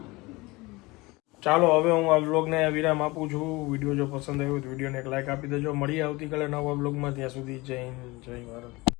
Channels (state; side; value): quieter; right; 22.9 dB